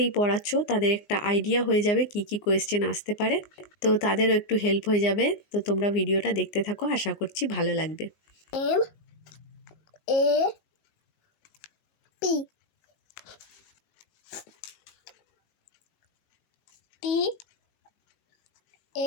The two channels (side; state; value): right; late; 19 ms